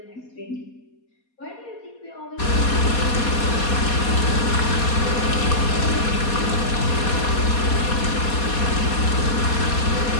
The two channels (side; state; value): right; late; 4.2 ms